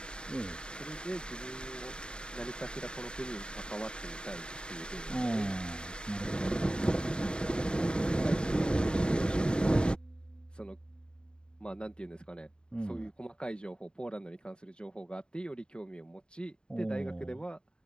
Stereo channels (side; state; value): right; late; 0.050 ms